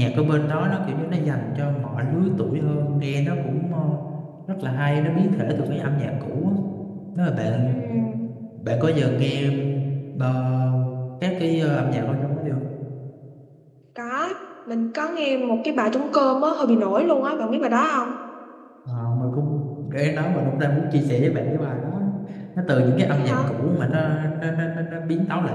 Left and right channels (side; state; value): both; identical; correlation 1.00